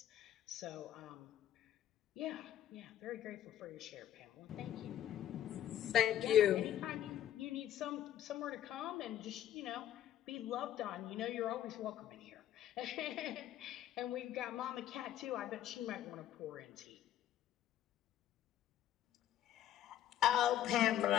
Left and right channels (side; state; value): right; quieter; 11.7 dB